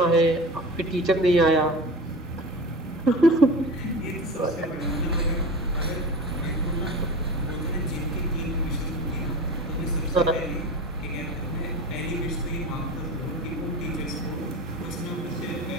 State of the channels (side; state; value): both; normal; correlation 0.32